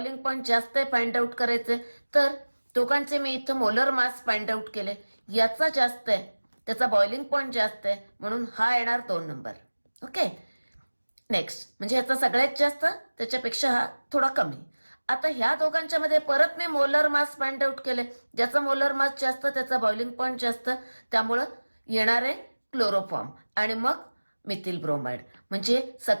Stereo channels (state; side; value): inverted; both; correlation -1.00